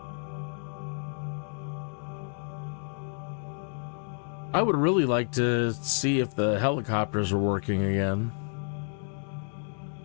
I would really like to see if the helicopters are working again.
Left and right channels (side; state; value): right; silent; 58 dB below the other